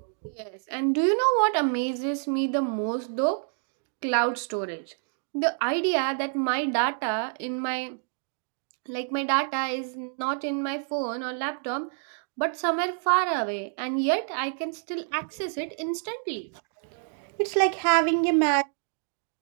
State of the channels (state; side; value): silent; left; 57 dB below the other